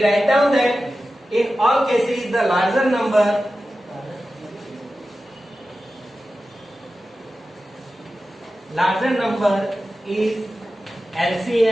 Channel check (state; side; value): normal; both; correlation 0.93